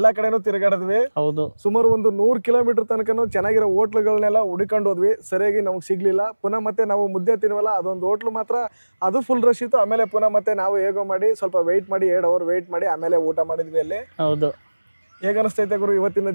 ಕಡೆನೂ ತಿರುಗಾಡಿದ್ವಿ. ಹೌದು, ಸುಮಾರು ಒಂದು 100 ಕಿಲೋಮೀಟರ್ ತನಕನೂ ಚೆನ್ನಾಗಿರೋ ಹೋಟ್ಲುಗಳನ್ನೆಲ್ಲ ಹುಡುಕೊಂಡು ಹೋದ್ವಿ, ಸರಿಯಾಗಿ ನಮಗೆ ಸಿಗ್ಲಿಲ್ಲ. ಪುನಃ ಮತ್ತೆ ನಾವು ಮುದ್ದೆ ತಿನ್ವಲ್ಲ, ಅದೊಂದು ಹೋಟ್ಲು ಮಾತ್ರ ಅದು ಫುಲ್ ರಶ್ ಇತ್ತು. ಆಮೇಲೆ ಪುನಃ ಮತ್ತೆ ನಾವು ಹೇಗೋ ಮಾಡಿ ಸ್ವಲ್ಪ ವೆಯ್ಟ್ ಮಾಡಿ 2 ಅವರ್ ವೆಯ್ಟ್ ಮಾಡಿ ಆಮೇಲೆ ಊಟ ಮಾಡಿದ್ವಿ ಅಲ್ಲಿ. ಹೌದು. ಹೇಗೆ ಅನಿಸ್ತೈತೆ ಗುರು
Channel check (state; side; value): inverted; both; correlation -1.00